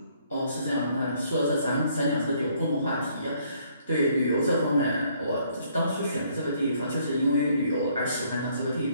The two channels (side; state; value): both; inverted; correlation -0.66